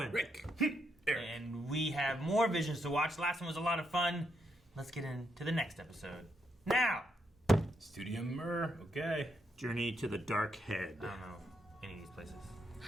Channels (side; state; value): both; normal; correlation 0.79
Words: Rick. And we have more visions to watch. Last one was a lot of fun. Let's get into the next episode. Now! Studio Mir. Okay. Journey to the Dark Head. I don't know any of these places.